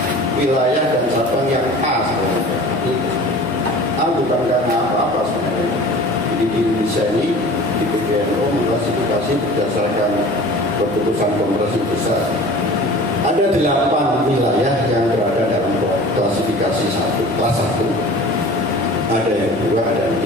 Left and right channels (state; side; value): normal; both; correlation 0.42